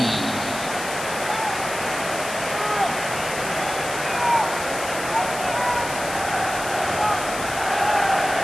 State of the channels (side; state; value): left; noise; hiss, 9 dB below the sound